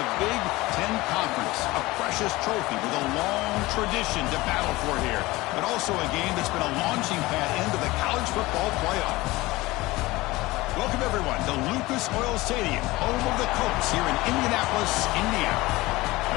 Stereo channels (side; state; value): right; quieter; 20.2 dB